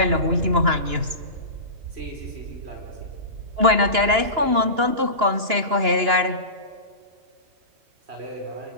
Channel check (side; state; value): left; late; 2.9 ms